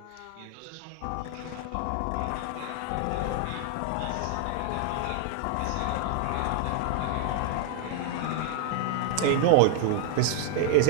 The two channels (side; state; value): both; different; correlation 0.00